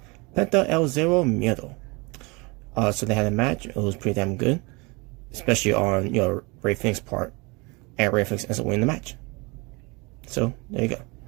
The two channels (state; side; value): quieter; left; 27.2 dB